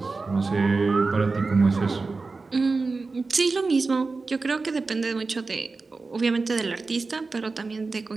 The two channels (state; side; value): quieter; left; 3.9 dB